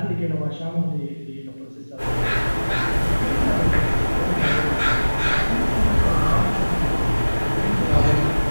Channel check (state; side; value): inverted; both; correlation -1.00